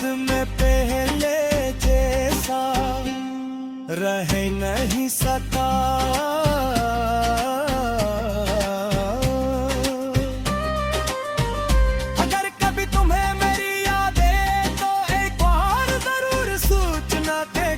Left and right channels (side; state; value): both; identical; correlation 1.00